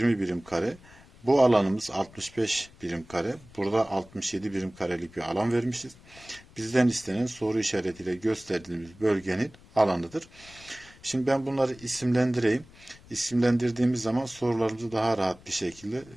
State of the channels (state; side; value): noise; left; rumble, 23 dB below the sound